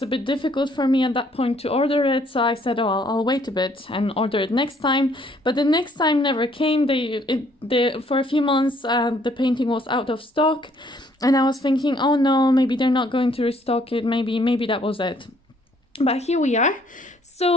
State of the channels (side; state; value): both; normal; correlation 0.64